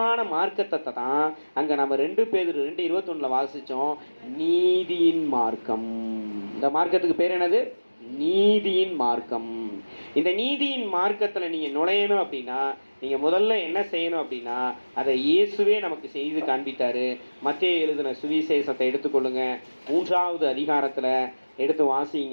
மார்க்கத்தை தான் அங்க நம்ம 2 பேதுரு 2:21 வாசிச்சோம். நீதியின் மார்க்கம். இந்த மார்க்கத்துக்கு பேர் என்னது? நீதியின் மார்க்கம். இந்த நீதியின் மார்க்கத்தில் நீங்கள் நுழையணும் அப்படின்னா நீங்கள் முதல்ல என்ன செய்யணும் அப்படின்னா அதை இயேசுவே நமக்கு செய்து காண்பித்தார். மத்தேயு எழுதின சுவிசேஷத்தை எடுத்துக்கொள்ளுங்க. 3வது அதிகாரத்தில் எடுத்து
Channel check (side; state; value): both; inverted; correlation -1.00